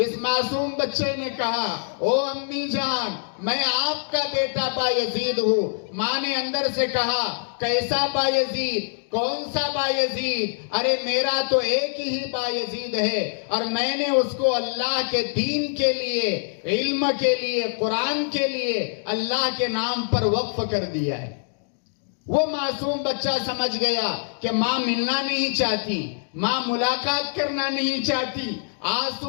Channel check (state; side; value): silent; right; digital silence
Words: معصوم بچے نے کہا, او امی جان, میں آپ کا بیٹا بایزید ہوں. ماں نے اندر سے کہا, کیسا بایزید؟ کون سا بایزید؟ ارے میرا تو ایک ہی بایزید ہے, اور میں نے اس کو اللہ کے دین کے لیے, علم کے لیے, قرآن کے لیے اللہ کے نام پر وقف کر دیا ہے. وہ معصوم بچہ سمجھ گیا کہ ماں ملنا نہیں چاہتی, ماں ملاقات کرنا نہیں چاہتی.